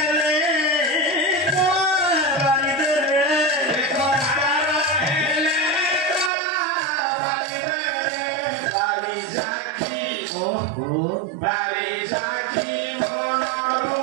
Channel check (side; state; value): left; drops out; at 6.3 s